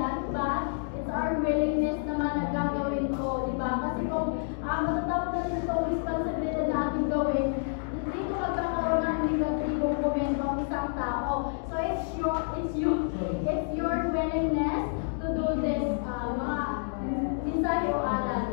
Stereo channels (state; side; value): silent; right; digital silence